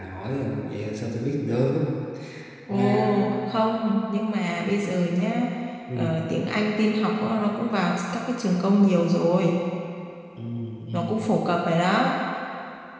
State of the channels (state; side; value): identical; both; correlation 1.00